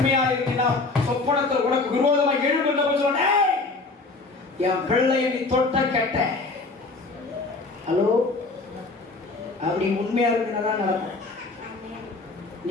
இருந்தா சொப்பனத்தில் உனக்கு விரோதமாக எழும்புகின்ற சொன்னே, என் பிள்ளையை நீ தொட்ட கெட்ட. ஹலோ, அப்படி உண்மையா இருந்தாதான் நடக்கும்.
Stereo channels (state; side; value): quieter; right; 3.6 dB